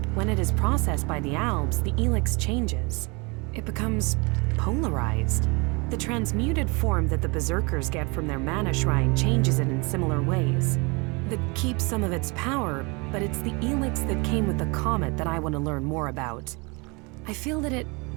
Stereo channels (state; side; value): quieter; left; 28.9 dB